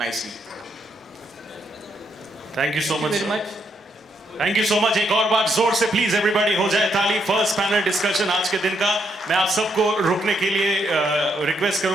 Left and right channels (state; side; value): normal; both; correlation 0.76